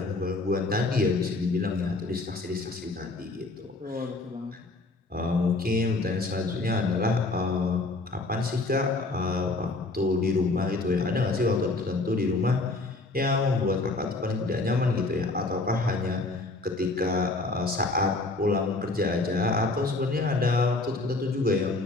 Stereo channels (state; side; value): quieter; right; 3.2 dB